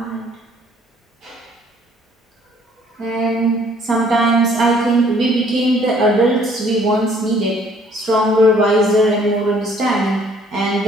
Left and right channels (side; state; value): both; normal; correlation 0.60